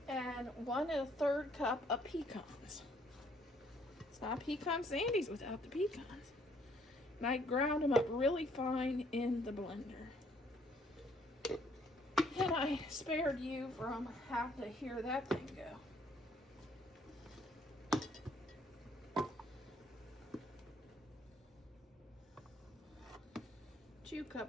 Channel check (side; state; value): both; normal; correlation 0.65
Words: And 1 1/3 cup of pecans. It's not pecan sandies without the pecans. And I ground them up really fine in the blender. And I spared you from having to hear that thing go. 2